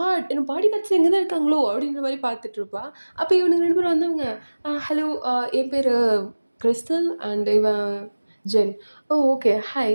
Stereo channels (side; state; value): both; inverted; correlation -1.00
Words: என்னோட பாடி கார்ட்ஸும் இங்க தான் இருக்காங்களோ! அப்படின்ற மாரி பார்த்துட்டுருப்பா. அப்ப இவனுங்க 2 பேரும் வந்தவங்க, ஹலோ என் பேரு கிறிஸ்டல் அண்ட் இவன் ஜென். ஓ! ஓகே.